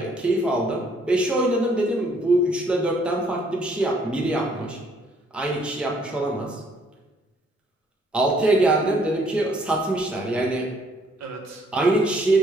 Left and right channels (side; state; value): both; normal; correlation 0.65